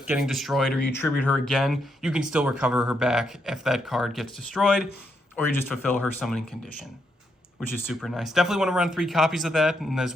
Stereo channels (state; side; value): normal; both; correlation 0.79